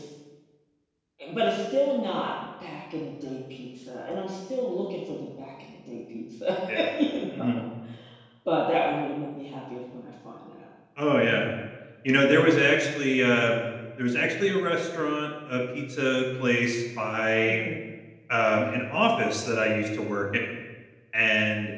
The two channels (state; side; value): identical; both; correlation 1.00